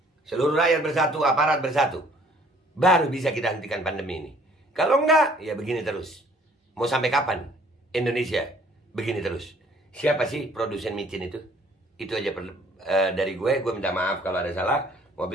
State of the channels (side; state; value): both; normal; correlation 0.58